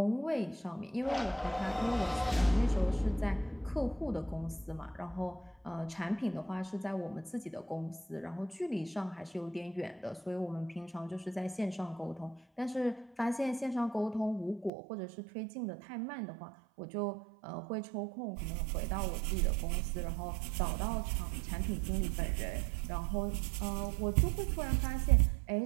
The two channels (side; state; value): left; drops out; at 14.7 s